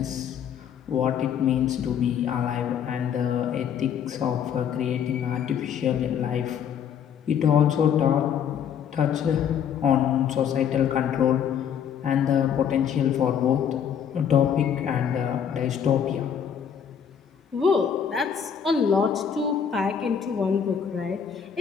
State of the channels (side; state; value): right; quieter; 8.1 dB